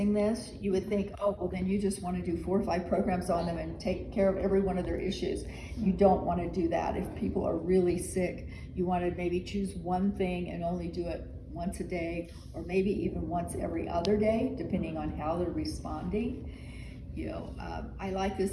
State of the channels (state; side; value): identical; both; correlation 1.00